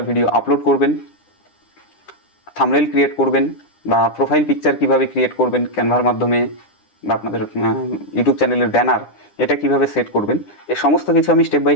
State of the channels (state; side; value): late; right; 9.9 ms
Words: ভিডিও আপলোড করবেন, থাম্বনেইল ক্রিয়েট করবেন, বা প্রোফাইল পিকচার কিভাবে ক্রিয়েট করবেন ক্যানভার মাধ্যমে, বা আপনাদের ইউটিউব চ্যানেলের ব্যানার এটা কিভাবে সেট করবেন, এই সমস্ত কিছু আমি স্টেপ বাই